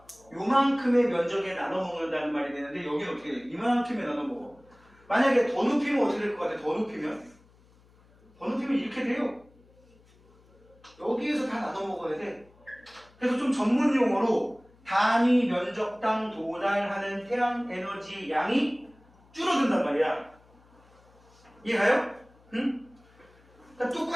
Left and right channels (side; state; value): left; noise; hum, 29 dB below the sound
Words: 요만큼의 면적에 나눠 먹는다는 말이 되는데 여기는 어떻게 돼? 이만큼에 나눠 먹어. 만약에 더 높이면 어떻게 될 것 같아? 더 높이면 이렇게 돼요. 여기에서 다 나눠 먹어야 돼. 그래서 좀 전문 용어로 단위 면적당 도달하는 태양 에너지 양이 줄어든단 말이야. 이해가요? 응? 그러니까